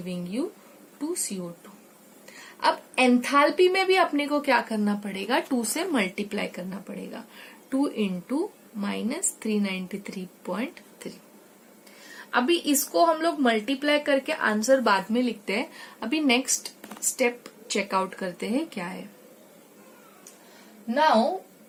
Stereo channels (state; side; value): identical; both; correlation 1.00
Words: you 2CO2. अब एंथैल्पी में भी अपने को क्या करना पड़ेगा, 2 से मल्टीप्लाई करना पड़ेगा. 2 into माइनस 393.3। अभी इसको हम लोग मल्टीप्लाई करके आंसर बाद में लिखते हैं। अभी नेक्स्ट स्टेप चेकआउट करते हैं क्या है। Now